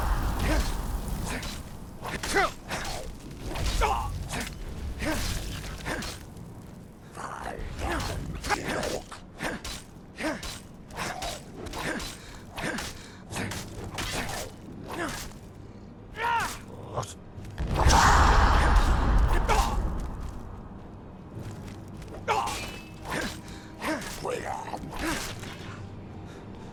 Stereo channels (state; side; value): identical; both; correlation 1.00